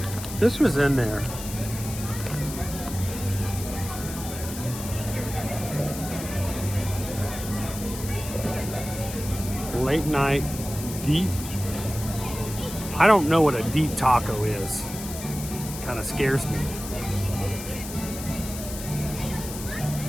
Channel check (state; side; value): noise; left; hiss, 10 dB below the sound